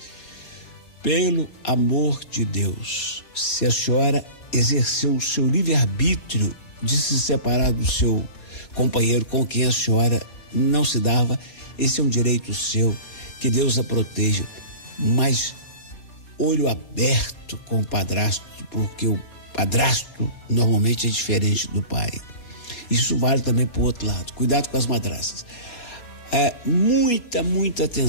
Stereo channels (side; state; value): right; late; 4.2 ms